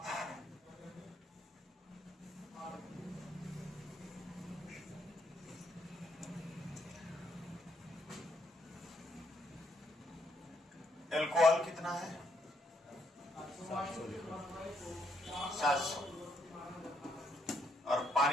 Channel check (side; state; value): both; normal; correlation 0.73